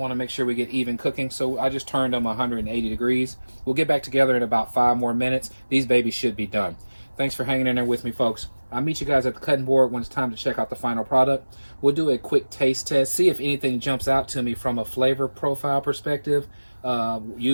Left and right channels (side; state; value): both; inverted; correlation -1.00